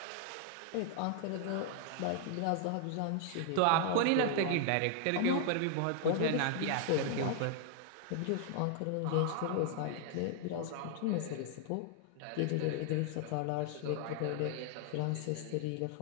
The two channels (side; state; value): both; different; correlation 0.00